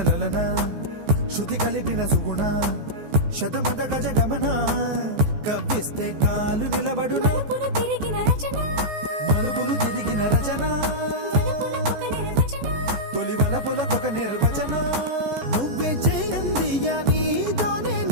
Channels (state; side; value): late; left; 14 ms